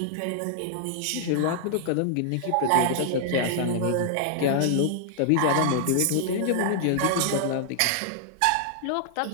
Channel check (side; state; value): both; different; correlation -0.01